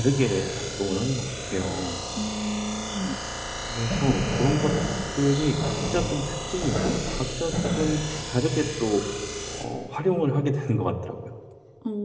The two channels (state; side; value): identical; both; correlation 1.00